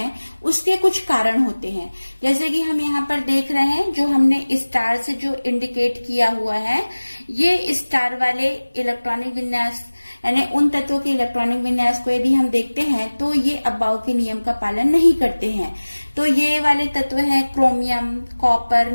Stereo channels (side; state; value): both; inverted; correlation -1.00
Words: उसके कुछ कारण होते हैं। जैसे कि हम यहाँ पर देख रहे हैं, जो हमने स्टार से जो इंडिकेट किया हुआ है, ये स्टार वाले इलेक्ट्रॉनिक विन्यास यानी उन तत्वों के इलेक्ट्रॉनिक विन्यास को यदि हम देखते हैं तो ये अबाव के नियम का पालन नहीं करते हैं। तो ये वाले तत्व हैं chromium, copper,